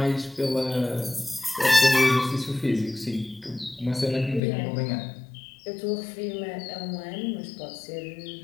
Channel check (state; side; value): drops out; right; at 4.4 s